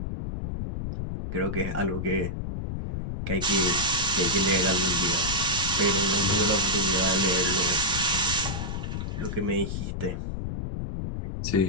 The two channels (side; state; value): left; noise; rumble, 4 dB below the sound